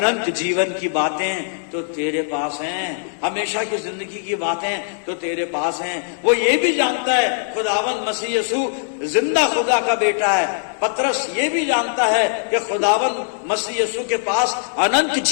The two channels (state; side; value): silent; right; digital silence